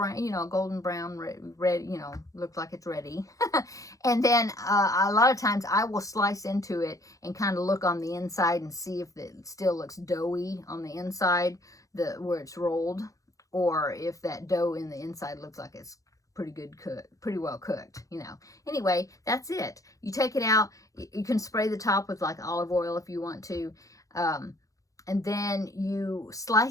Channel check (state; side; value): late; right; 0.16 ms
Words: you know, golden brown, red, you know, looks like it's ready. And then a lot of times I will slice into it and kind of look on the inside and see if it still looks doughy on the inside, where it's rolled, or if that dough in the inside looks like it's pretty well cooked, you know. Anyway, that's it. You take it out. You can spray the top with like olive oil if you want to. And then you